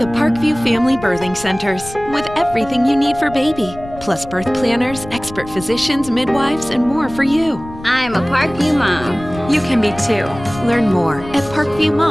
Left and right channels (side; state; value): left; noise; rumble, 16 dB below the sound